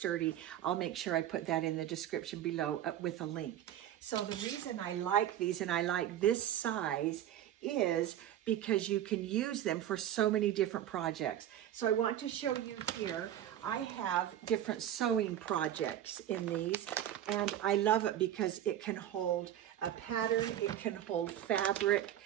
I'll make sure I put that in the description below with a link. So the reason I like these and I like this size is because you can use them for so many different projects. So I want to show you here, I have different sewing projects in these, and I love it because it can hold a pattern, it can hold fabric.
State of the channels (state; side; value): quieter; left; 11.2 dB